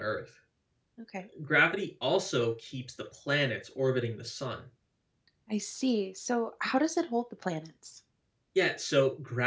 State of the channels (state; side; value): identical; both; correlation 1.00